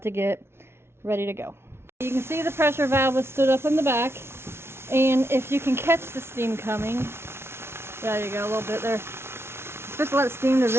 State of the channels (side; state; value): left; late; 0.12 ms